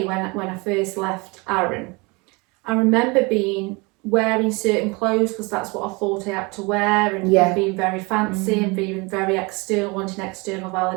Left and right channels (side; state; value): left; quieter; 27.3 dB